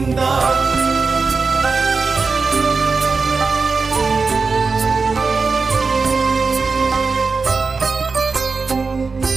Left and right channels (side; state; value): left; quieter; 4.5 dB